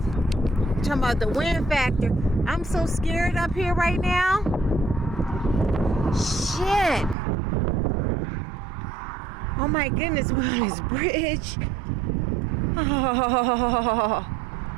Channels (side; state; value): left; drops out; at 7.2 s